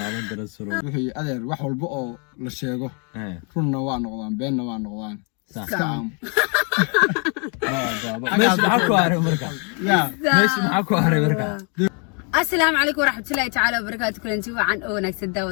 rasuulullah wixii adeer wax walba oo la sheego runna waa noqdaan beenna waa noqdaan iska aamu meesha maxaa ku haray marka meesha maxaa ku haray marka السلام عليكم ورحمة الله تعالى وبركاته كل انتي وعن نكس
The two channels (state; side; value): quieter; right; 37.2 dB